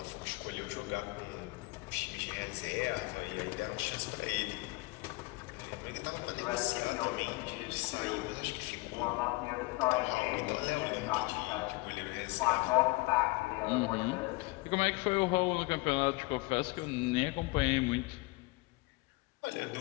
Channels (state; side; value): quieter; right; 24.3 dB